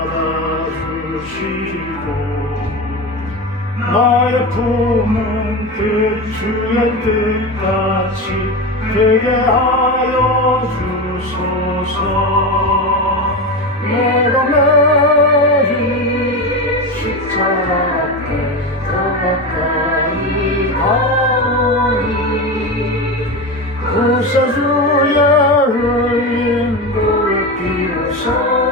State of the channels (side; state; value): both; normal; correlation 0.21